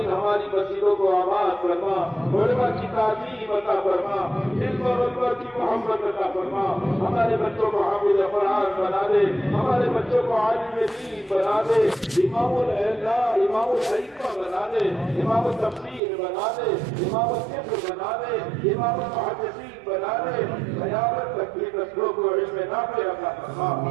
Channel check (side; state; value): left; drops out; at 16.0 s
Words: ہماری مسجدوں کو آباد فرما، علماء کی تعظیم عطا فرما، علم اور اکبر کی محبت عطا فرما، ہمارے بچوں کو حافظ قرآن بنا دے، ہمارے بچوں کو عالم دین بنا دے، امام العلماء امام الحکمہ بنا دے، امام التفسیر بنا دے، امام الفقہ بنا دے، امام المحدثین بنا دے، قیامت تک کی نسلوں کو علم نافع عطا فرما۔